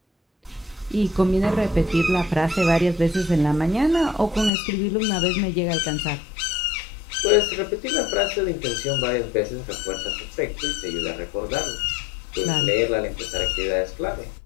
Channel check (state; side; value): drops out; right; at 4.5 s